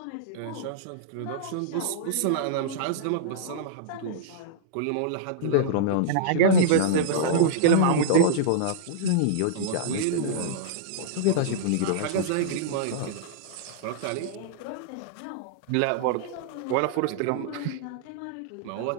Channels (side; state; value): both; different; correlation -0.02